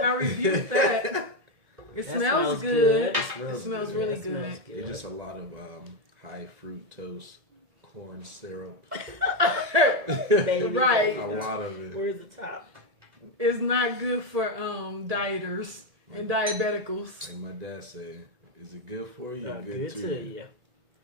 I rebuke that. It smells good. It smells good. Really good. It's just a lot of high fructose corn syrup. Right. A lot of it. Where's the top? It's not good for dieters and diabeticals. Like my dad said, is it good for you? Good to you.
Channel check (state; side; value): late; left; 1.8 ms